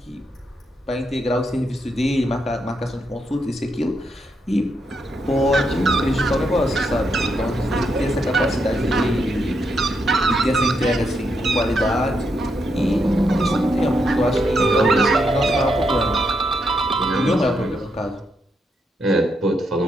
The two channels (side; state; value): both; normal; correlation 0.80